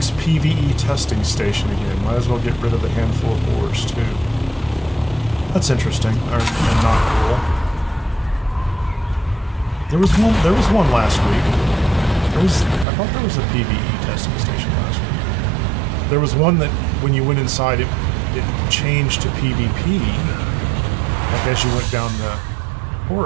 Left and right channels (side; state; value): left; drops out; at 12.9 s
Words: PvE testing station again. Might as well get rid of a handful of ores too. That's interesting, and not cool. There was one last week. I thought there was a PvE testing station last week. There was one that, when you went inside, it changed to PvP, like as you went down the